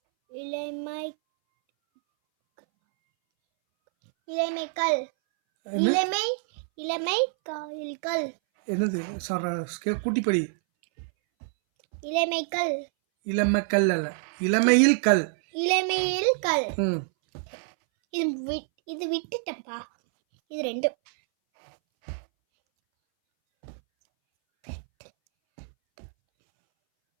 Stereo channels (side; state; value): left; silent; 60 dB below the other